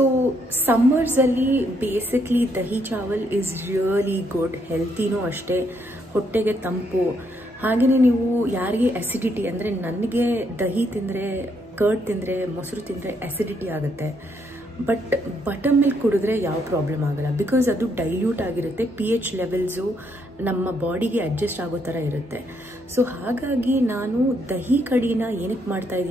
ಸಮ್ಮರ್ಸಲ್ಲಿ basically dahi chawal is really good, ಹೆಲ್ತಿನೂ ಅಷ್ಟೇ, ಹೊಟ್ಟೆಗೆ ತಂಪು. ಹಾಗೆಯೇ ನೀವು ಯಾರಿಗೆ ಅಸಿಡಿಟಿ, ಅಂದರೆ ನನಗೆ ದಹಿ ತಿಂದರೆ, ಕರ್ಡ್ ತಿಂದರೆ, ಮೊಸರು ತಿಂದರೆ ಅಸಿಡಿಟಿ ಆಗುತ್ತೆ. ಬಟ್ ಬಟರ್ ಮಿಲ್ಕ್ ಕುಡಿದ್ರೆ ಯಾವ ಪ್ರಾಬ್ಲಮ್ ಆಗಲ್ಲ, ಬಿಕಾಸ್ ಅದು ಡೈಲ್ಯೂಟ್ ಆಗಿರುತ್ತೆ, pH ಲೆವೆಲ್ಸು ನಮ್ಮ ಬಾಡಿಗೆ ಅಡ್ಜಸ್ಟ್ ಆಗೋ ಥರ ಇರುತ್ತೆ. ಸೊ ಹಾಗಾಗಿ ನಾನು ದಹಿ ಕಡಿನ ಏನಕ್ಕೆ ಮಾಡ್ತಾ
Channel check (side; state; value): both; normal; correlation 0.74